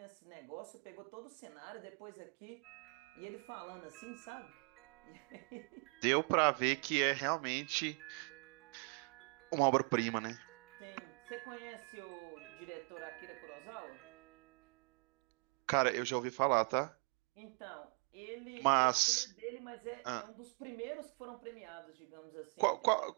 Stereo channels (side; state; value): left; quieter; 35.6 dB